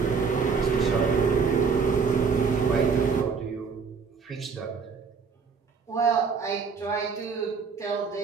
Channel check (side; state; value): left; quieter; 5.5 dB